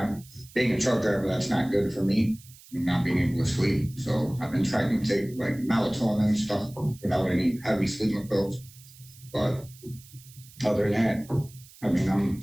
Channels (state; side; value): noise; right; hiss, 22 dB below the sound